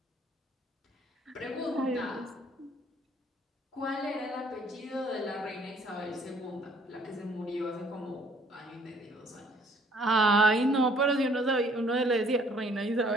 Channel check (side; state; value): both; normal; correlation 0.59